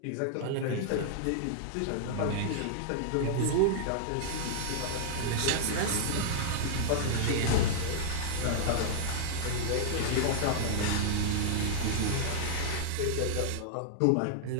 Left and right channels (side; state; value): both; different; correlation -0.01